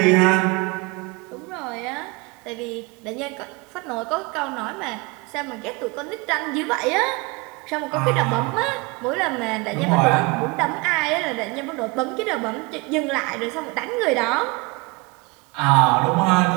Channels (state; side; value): quieter; left; 27.2 dB